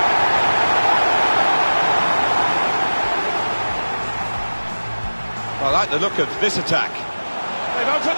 I like the look of this attack. They've opened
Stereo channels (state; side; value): inverted; both; correlation -1.00